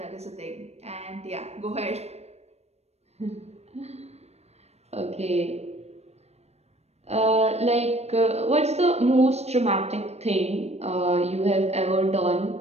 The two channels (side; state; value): left; late; 0.31 ms